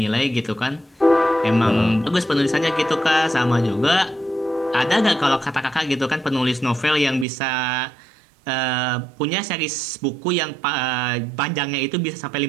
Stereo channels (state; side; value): drops out; left; at 7.2 s